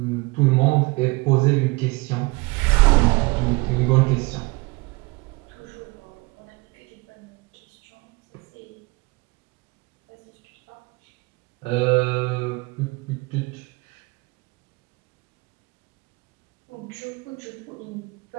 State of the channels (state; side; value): quieter; left; 25.3 dB